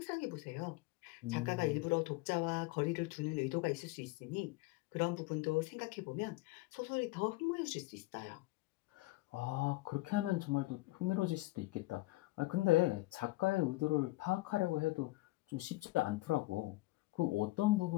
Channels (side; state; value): right; quieter; 20.4 dB